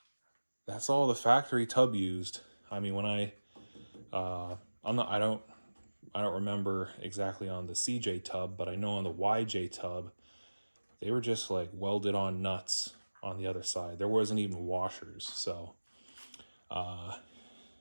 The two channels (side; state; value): both; inverted; correlation -1.00